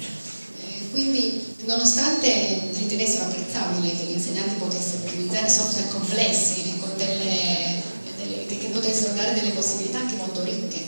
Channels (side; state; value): both; inverted; correlation -1.00